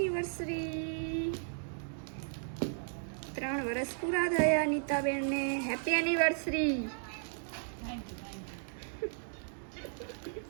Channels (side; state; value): left; silent; digital silence